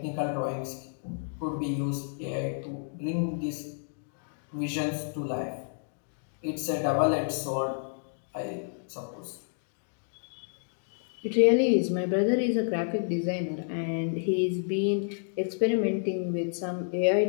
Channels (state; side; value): silent; right; digital silence